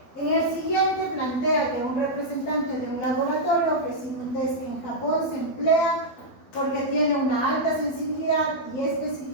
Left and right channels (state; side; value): late; right; 12 ms